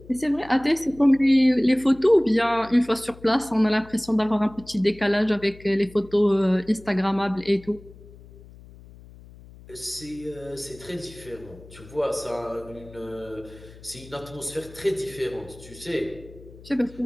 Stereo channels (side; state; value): left; noise; hum, 20 dB below the sound